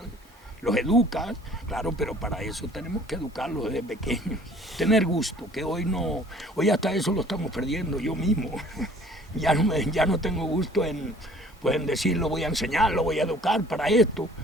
Los educas, claro, pero para eso tenemos que educarlos desde pequeños. Tener gusto, que hoy no, hoy hasta eso lo estamos perdiendo yo mismo. Ya no tengo gusto en, pues, en decir, lo voy a enseñar, lo voy a educar para esto.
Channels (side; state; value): both; normal; correlation 0.52